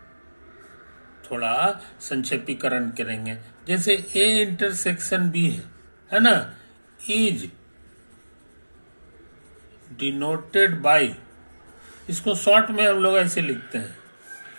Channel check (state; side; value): inverted; both; correlation -1.00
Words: करेंगे। जैसे ए इंटरसेक्शन बी है ना, इज डिनोटेड बाय, इसको शॉर्ट में हम लोग ऐसे लिखते हैं,